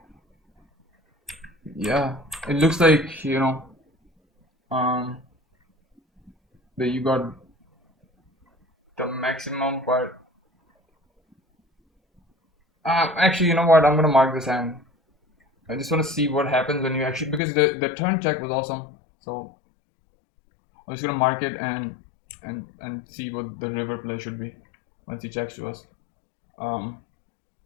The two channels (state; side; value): drops out; right; at 17.4 s